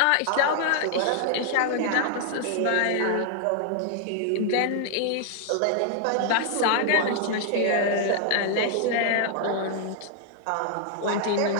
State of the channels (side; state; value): both; different; correlation 0.00